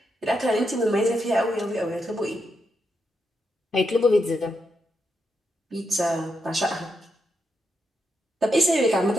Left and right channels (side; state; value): both; normal; correlation 0.83